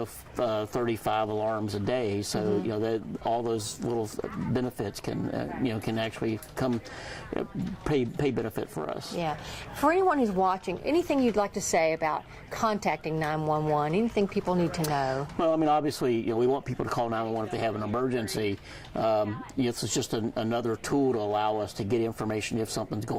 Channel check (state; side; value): identical; both; correlation 1.00